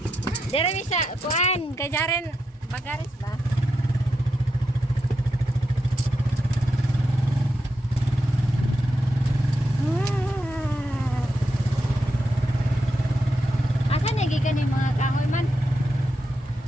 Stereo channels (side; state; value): both; normal; correlation 0.85